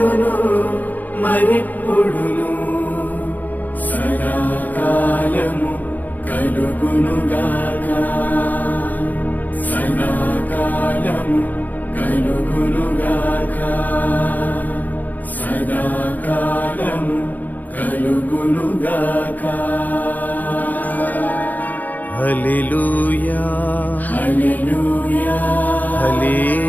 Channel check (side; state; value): right; late; 0.082 ms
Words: మరెప్పుడును సదాకాలము కలుగునుగాక. సదాకాలము కలుగునుగాక. సదాకాలము కలుగునుగాక. హల్లెలూయా హల్లెలూయా